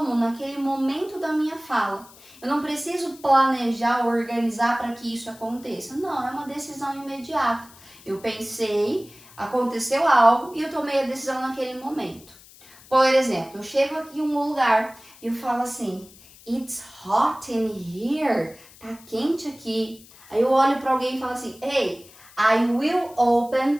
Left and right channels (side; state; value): left; noise; hiss, 23 dB below the sound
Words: naquele momento da minha fala. Eu não preciso planejar, organizar para que isso aconteça. Não, é uma decisão imediata. Eu pensei, aconteceu algo e eu tomei a decisão naquele momento. Por exemplo, eu chego aqui em um lugar e eu falo assim, It's hot in here. tá quente aqui. Aí eu olho para alguém e falo assim, hey, I will open